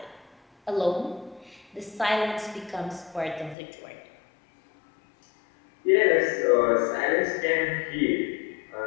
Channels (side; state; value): right; drops out; at 3.6 s